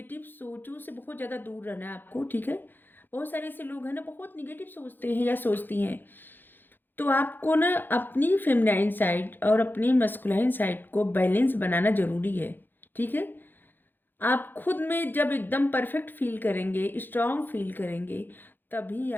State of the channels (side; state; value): right; late; 0.093 ms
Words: सोचों से बहुत ज़्यादा दूर रहना है आपको, ठीक है। बहुत सारे ऐसे लोग हैं ना, बहुत निगेटिव सोचते हैं या सोचती हैं, तो आपको ना अपनी फेमिनाइन साइड और अपनी मस्कुलाइन साइड को बैलेंस बनाना ज़रूरी है, ठीक है। आप खुद में जब एकदम परफेक्ट फील करेंगे, स्ट्रांग फील करेंगे, तभी